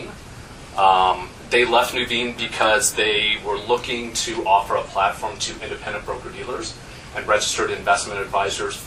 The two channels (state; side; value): identical; both; correlation 1.00